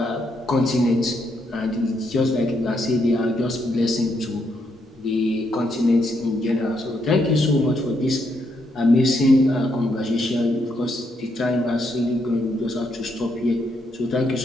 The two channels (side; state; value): both; normal; correlation 0.77